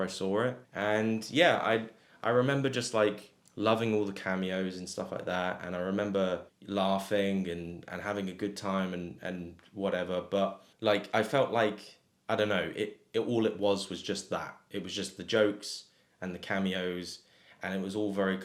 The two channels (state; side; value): identical; both; correlation 1.00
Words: I saw it, and yeah, I remember just like loving all the cameos and stuff like that, and I remember laughing and having a good time and whatever, but like I felt like I don't know, it all it was just that. It was just the jokes and the cameos, and it was all very